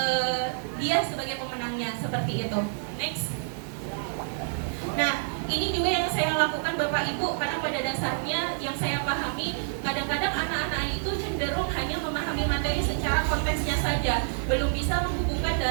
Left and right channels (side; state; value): left; silent; digital silence